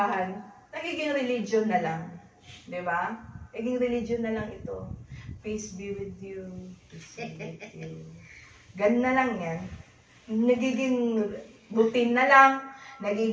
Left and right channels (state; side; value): identical; both; correlation 1.00